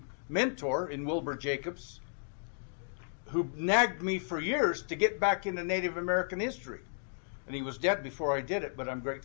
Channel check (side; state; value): right; silent; digital silence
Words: mentor in Wilbur Jacobs, who nagged me for years to get back into Native American history. And he was dead before I did it, but I'm